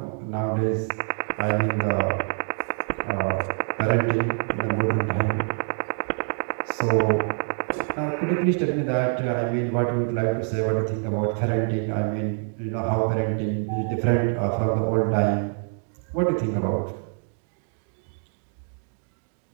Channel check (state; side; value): silent; left; 55 dB below the other